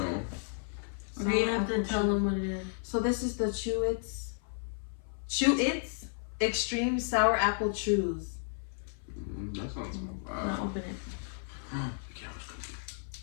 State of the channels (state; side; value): silent; right; 56 dB below the other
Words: Okay, you have to tell them what it is. So this is the Chew-Its Extreme Sour Apple Chews. That sounds Now bad. open it. The camera's